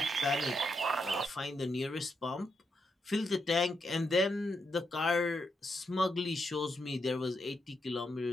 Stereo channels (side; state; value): both; normal; correlation 0.82